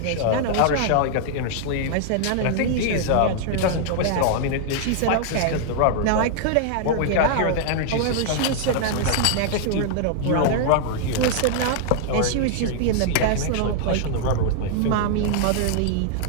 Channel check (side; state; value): both; different; correlation -0.01